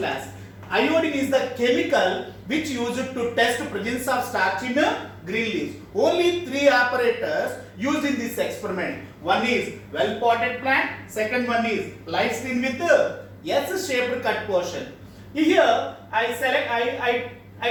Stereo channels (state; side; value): identical; both; correlation 1.00